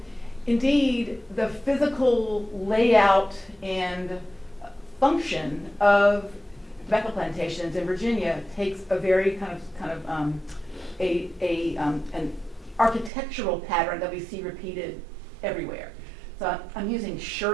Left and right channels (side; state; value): left; drops out; at 13.1 s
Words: indeed, the physical layout and function of tobacco plantations in Virginia takes a very an architectural pattern that we see repeated everywhere. So I'm using